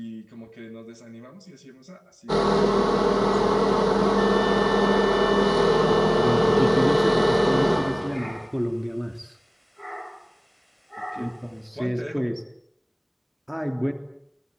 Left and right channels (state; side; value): identical; both; correlation 1.00